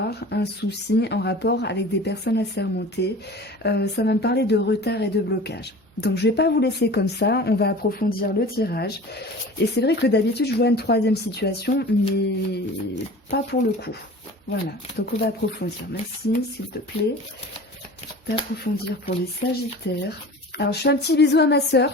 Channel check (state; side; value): normal; both; correlation 0.39